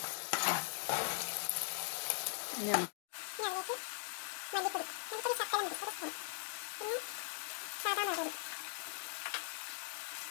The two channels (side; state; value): right; silent; digital silence